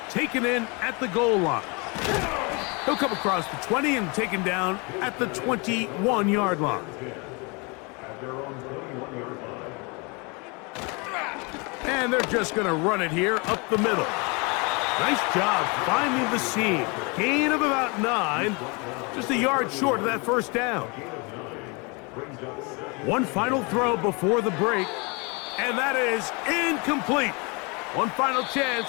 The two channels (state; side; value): quieter; right; 30.1 dB